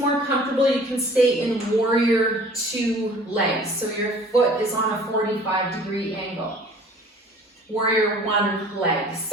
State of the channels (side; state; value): both; normal; correlation 0.49